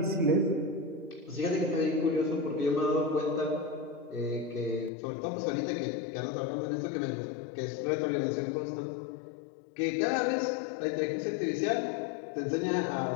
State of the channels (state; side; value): drops out; right; at 4.9 s